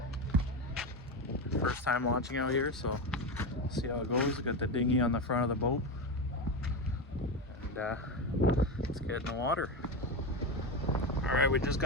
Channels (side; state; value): both; normal; correlation 0.16